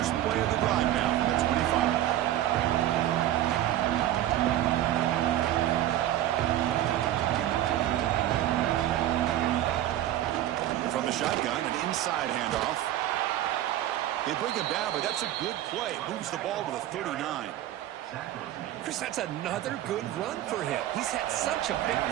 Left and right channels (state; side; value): quieter; left; 13.1 dB